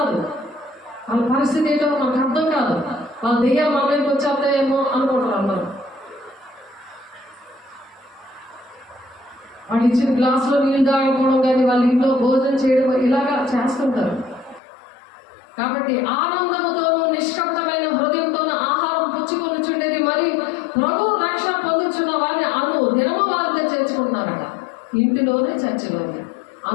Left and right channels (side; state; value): right; drops out; at 14.6 s